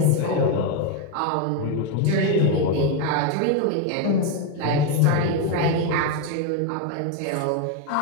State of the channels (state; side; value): different; both; correlation 0.02